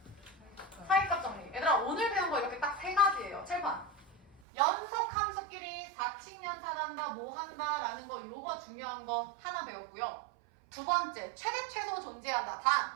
사이값 정리. 얘들아 오늘 배운 거 이렇게 딱 3가지예요. 칠판. 연속 함수끼리 사칙연산한다 뭐 한다 라는 거 요거 중요한 거 하나 배웠고요. 두 번째 최대 최소 존재한다.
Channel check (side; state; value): left; drops out; at 4.4 s